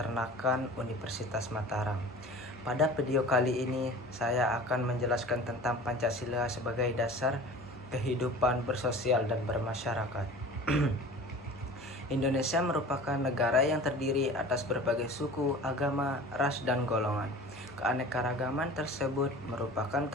Universitas Mataram. Pada video kali ini saya akan menjelaskan tentang Pancasila sebagai dasar kehidupan bersosial dan bermasyarakat. Indonesia merupakan negara yang terdiri atas berbagai suku, agama, ras, dan golongan. Keanekaragaman tersebut merupakan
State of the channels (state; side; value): normal; both; correlation 0.40